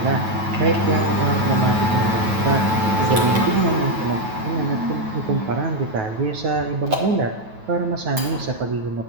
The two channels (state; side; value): late; left; 9.3 ms